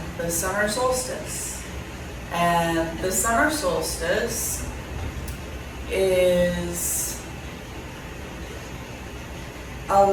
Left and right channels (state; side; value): identical; both; correlation 1.00